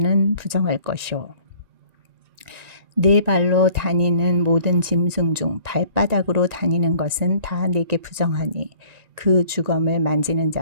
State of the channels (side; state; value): left; late; 1.9 ms